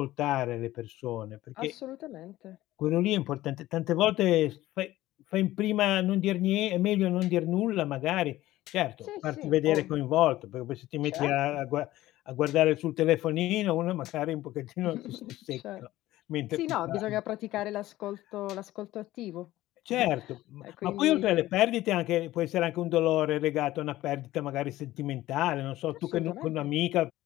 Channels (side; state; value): right; quieter; 15.9 dB